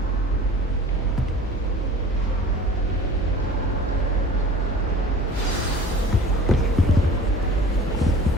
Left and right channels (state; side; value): normal; both; correlation 0.43